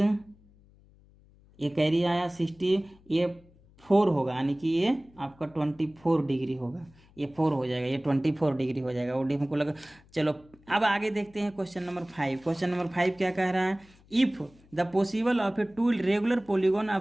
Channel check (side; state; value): left; noise; hum, 28 dB below the sound